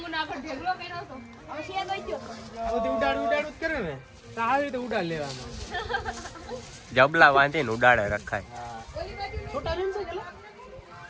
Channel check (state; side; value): identical; both; correlation 1.00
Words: બધી ઉડાડું જ કરે ને તો આવી રીતે ઉડાડ લેવાનું જબલા વાંધીને ઉડાડે રખાય. છોટા ભીમ છે ચલો